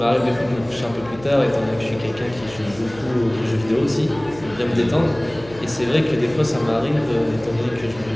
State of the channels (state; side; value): noise; left; hum, 19 dB below the sound